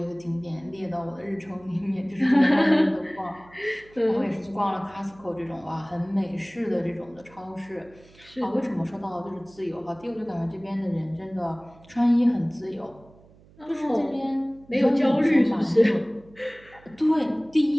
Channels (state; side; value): noise; right; hum, 26 dB below the sound